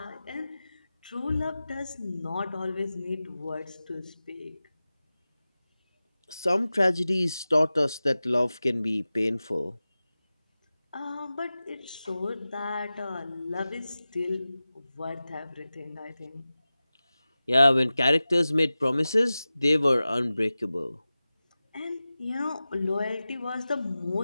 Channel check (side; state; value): both; inverted; correlation -0.96